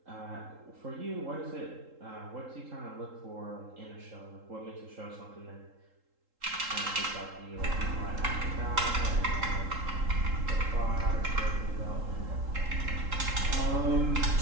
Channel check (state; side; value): late; left; 3.8 ms